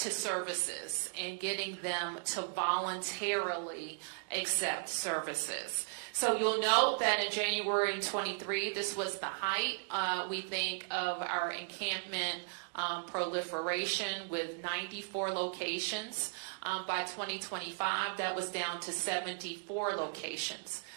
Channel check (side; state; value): left; silent; digital silence